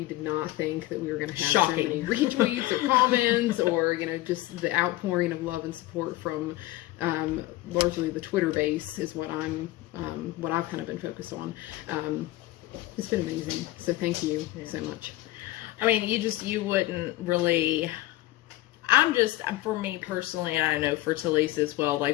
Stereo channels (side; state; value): right; quieter; 17.0 dB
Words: did not think that we were going to have so many retweets or comments or, just the outpouring of love and support from largely the Twitter base is what I've kind of been focused on. It's been amazing. So thank you so much. I mean, you wouldn't really... for me personally, and I know for Talise as well,